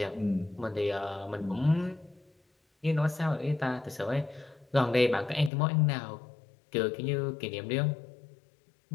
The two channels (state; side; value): drops out; right; at 5.5 s